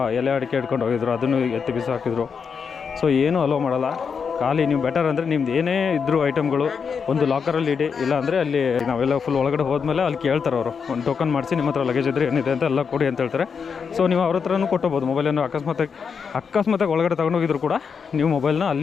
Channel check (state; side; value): quieter; right; 6.1 dB